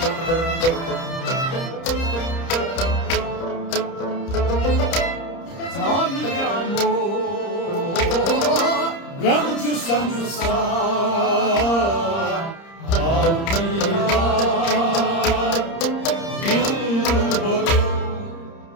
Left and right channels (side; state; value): right; late; 30 ms